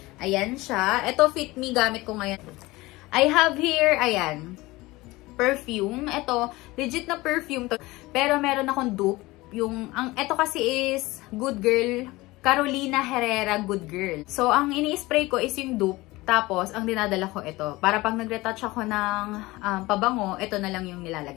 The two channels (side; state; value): right; quieter; 20.4 dB